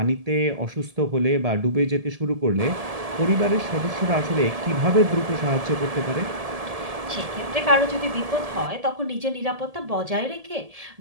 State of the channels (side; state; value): left; late; 1.7 ms